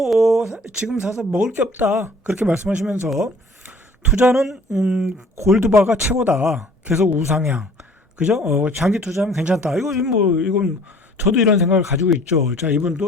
지금 사서 먹을 게 없다. 그렇게 말씀하시면서 투자는 골드바가 최고다. 계속 우상향. 그죠? 장기 투자하면 괜찮다. 이건 저도 이런 생각을 가지고 있죠. 자,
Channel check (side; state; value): both; normal; correlation 0.53